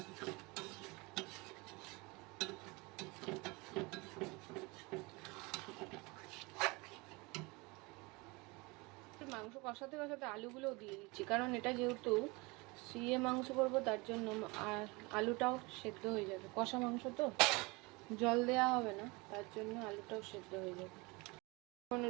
মাংস কষাতে কষাতে আলুগুলোও দিয়ে দিচ্ছি, কারণ এটা যেহেতু সিয়ে মাংস করবো, তার জন্য আর আলুটাও সেদ্ধ হয়ে যাবে। কষা মাংস তো জল দেওয়া হবে না, তার জন্য আলুটাও সেদ্ধ হয়ে যাবে। এখন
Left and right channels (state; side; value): quieter; left; 25.7 dB